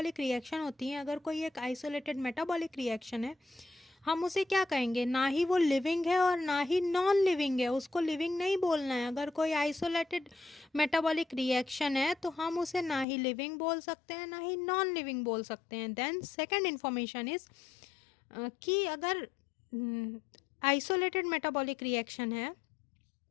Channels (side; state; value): right; drops out; at 13.1 s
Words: रिएक्शन होती हैं, अगर कोई एक आइसोलेटेड मेटाबॉलिक रिएक्शन है, हम उसे क्या कहेंगे? ना ही वो लिविंग है और ना ही नॉन लिविंग है। उसको लिविंग नहीं बोलना है। अगर कोई आइसोलेटेड मेटाबॉलिक रिएक्शन है तो हम उसे ना ही लिविंग बोल सकते हैं ना ही नॉन लिविंग बोल सकते हैं। देन सेकेंड इन्फॉर्मेशन इज कि अगर आइसोलेटेड मेटाबॉलिक रिएक्शन है,